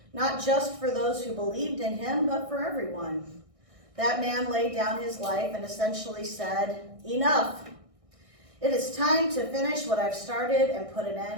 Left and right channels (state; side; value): late; left; 1.6 ms